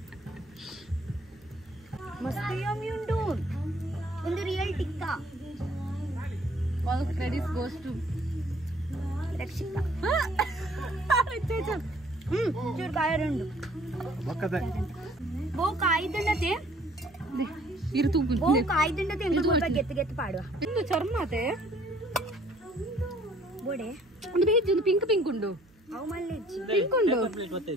ಮಸ್ತ್ ಯಮ್ಮಿ ಉಂಟು ಒಂದು real tikka all credits goes to Rakshita ಚೂರು ಕಾಯರುಂಡು ಬಕ್ಕದ ಬೋ ಕಾಯ್ದಂಡತೆ ಇರು ತೂಪು ಬೋ ಕಾಯ್ದಂಡತೆ ಎಂಗ ಸ್ವಲ್ಪ ಗೆತ್ತು ಗೆತ್ತು ಪಾಡುವ ಇಂದು ಚರ್ಮತೆ ಬೋಡೆ ಒಂದು ಬೇಜ್ ಒಂದು ಪಿಂಕ್ ಉಂಡು ಅವು ಮಲ್ಲೆಜ್ಜಿ ಪಿಂಕ್ ಉಂಡು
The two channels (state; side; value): noise; right; hum, 29 dB below the sound